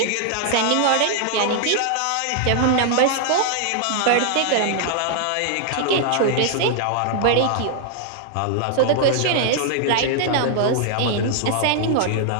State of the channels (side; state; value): both; different; correlation 0.00